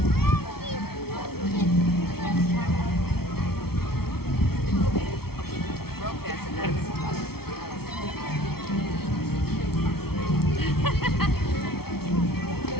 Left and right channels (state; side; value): late; right; 0.95 ms